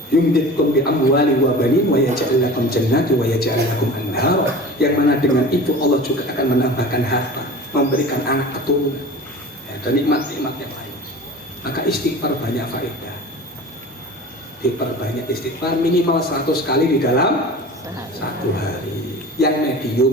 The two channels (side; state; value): both; normal; correlation 0.37